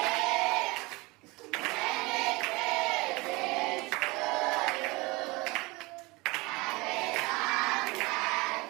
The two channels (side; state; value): left; quieter; 24.0 dB